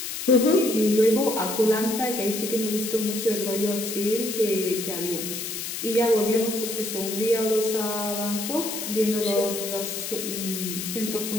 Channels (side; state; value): left; noise; hiss, 5 dB below the sound